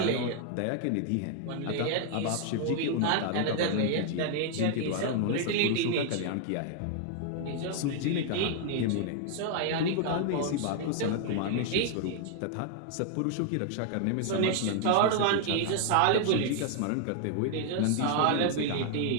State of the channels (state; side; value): different; both; correlation 0.00